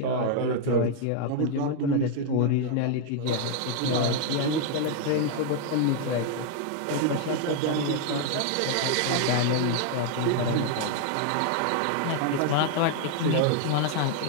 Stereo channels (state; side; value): different; both; correlation 0.00